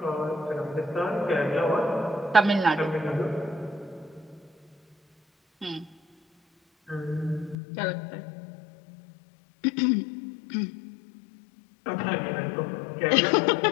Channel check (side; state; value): right; drops out; at 7.6 s